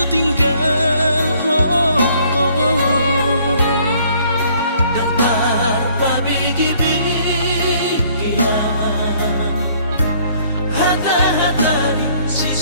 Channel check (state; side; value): inverted; both; correlation -0.61